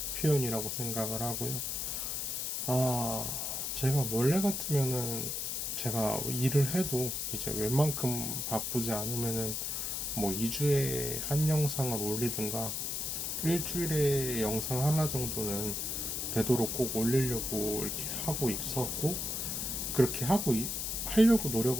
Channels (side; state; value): left; noise; hiss, 2 dB below the sound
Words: 표현이라고 생각을 하고요. 아, 제가 원래 같으면은 제가 일을 해도 이제 웬만큼 바쁘지 않으면은 뭐 2주에 한 영상을 올리든가 일주일에 영상 하나 정도는 되도록 꼭 올리려고 이렇게 하고 있었고, 그렇게 하려고